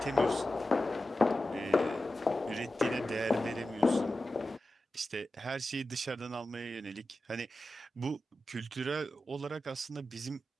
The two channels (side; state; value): both; normal; correlation 0.93